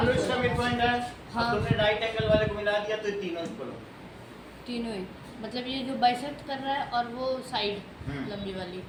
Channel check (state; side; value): identical; both; correlation 1.00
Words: लो इसका मिड पॉइंट है, हाँ। अब तुमने राइट एंगल वाले को मिला दिया तो ये तीनों इक्वल हो। तीनों ही, मतलब ये जो बाइसेक्ट कर रहा है और वो साइड लंबी वाली।